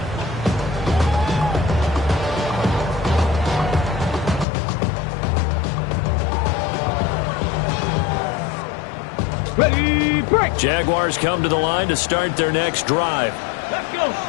Ready, break. Jaguars come to the line to start their next drive. Let's go.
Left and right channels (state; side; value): drops out; right; at 4.5 s